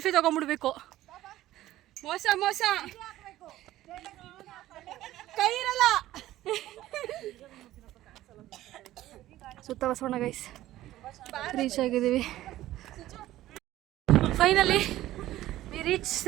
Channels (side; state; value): left; quieter; 14.9 dB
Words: ತೊಗೊಂಡ್ಬಿಡ್ಬೇಕು. ಮೋಸ ಕೈ ಇರಲ್ಲ. ಸುತ್ತ ಬಸವಣ್ಣ ಗೈಸ್ ರೀಚ್ ಆಗಿದ್ದೀವಿ. Finally we reach